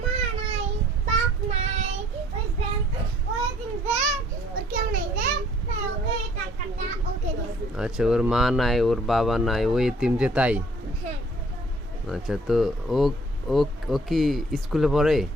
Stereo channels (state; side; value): normal; both; correlation 0.59